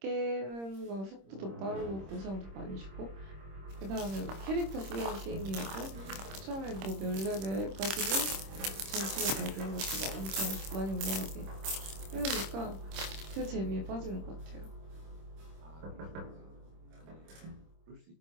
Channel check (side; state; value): left; late; 26 ms